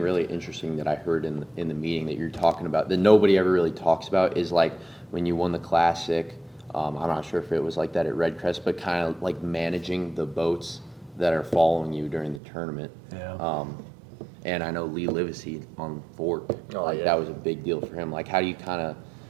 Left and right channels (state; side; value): drops out; left; at 12.4 s